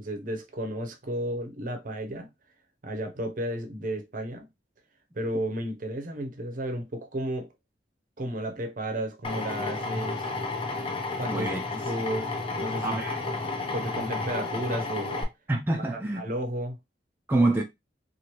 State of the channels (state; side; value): normal; both; correlation 0.53